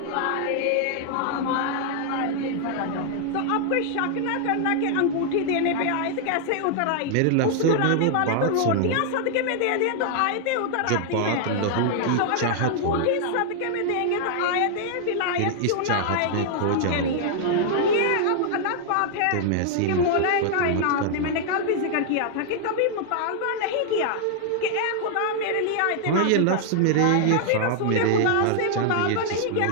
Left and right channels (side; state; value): both; different; correlation -0.01